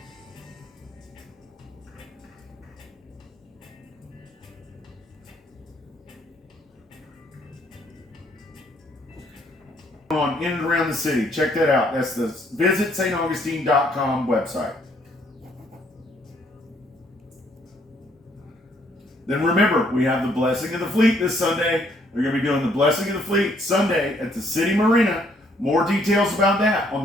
On in and around the city. Check that out. That's the visitstaugustine.com website. Then remember, we have the Blessing of the Fleet this Sunday. We're going to be doing the Blessing of the Fleet Sunday at the City Marina. More details about that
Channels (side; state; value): both; normal; correlation 0.67